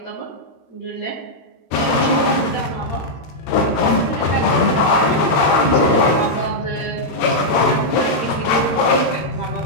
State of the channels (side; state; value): right; late; 13 ms